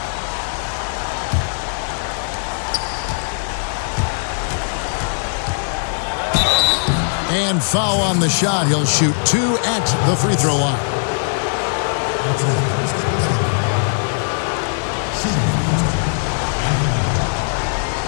And foul on the shot. He'll shoot 2 at the free throw line.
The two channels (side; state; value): right; silent; digital silence